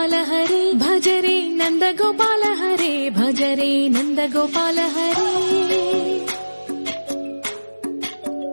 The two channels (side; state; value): both; inverted; correlation -1.00